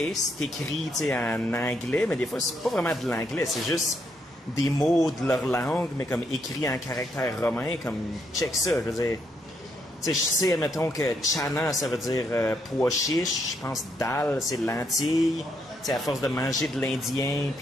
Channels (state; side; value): normal; both; correlation 0.76